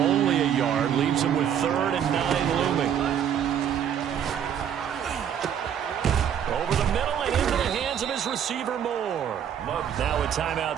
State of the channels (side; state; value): left; quieter; 9.1 dB